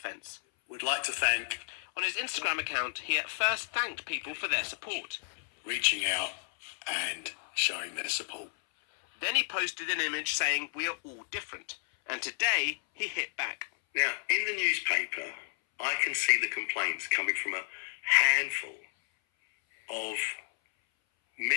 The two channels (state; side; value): silent; right; 57 dB below the other